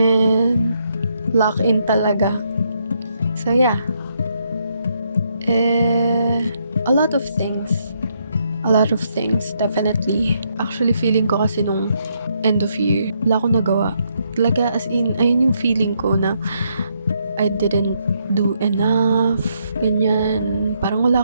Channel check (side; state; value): both; inverted; correlation -0.76